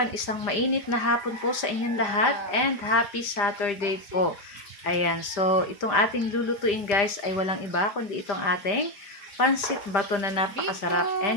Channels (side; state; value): right; late; 5.0 ms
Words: isang mainit na hapon po sa inyong lahat and happy Saturday po. Ayan, so itong ating lulutuin guys ay walang iba kundi itong ating pansit bato na napakasarap